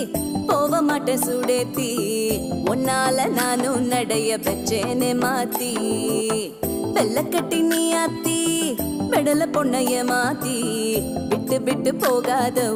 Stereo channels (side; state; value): both; identical; correlation 1.00